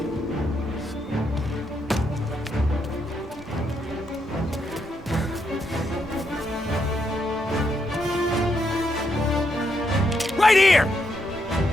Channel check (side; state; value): both; normal; correlation 0.79